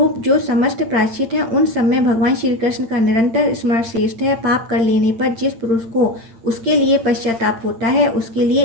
जो समस्त प्रायश्चित हैं उन सब में भगवान श्री कृष्ण का निरंतर स्मरण श्रेष्ठ है। पाप कर लेने पर जिस पुरुष को उसके लिए पश्चाताप होता है उसके लिए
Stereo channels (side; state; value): left; late; 8.8 ms